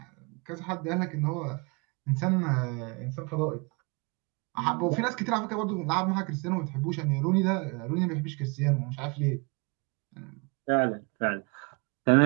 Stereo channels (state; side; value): quieter; left; 30.9 dB